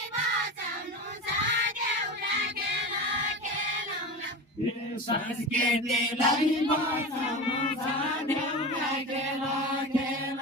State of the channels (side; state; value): both; normal; correlation 0.27